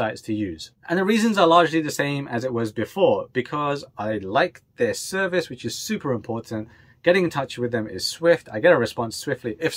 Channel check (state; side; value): identical; both; correlation 1.00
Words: to use, and the reasons are largely the same as it was before, because I like their service, which is super important. Getting in touch with them is swift. I get a response swiftly. If